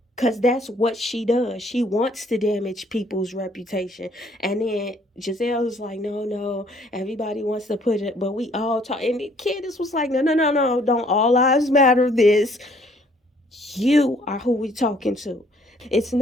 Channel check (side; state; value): both; normal; correlation 0.62